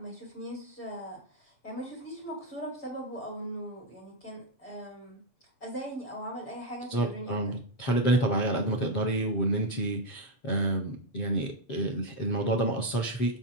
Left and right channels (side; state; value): right; late; 7.3 ms